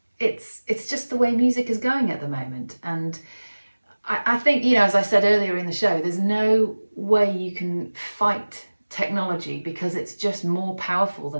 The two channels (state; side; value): inverted; both; correlation -1.00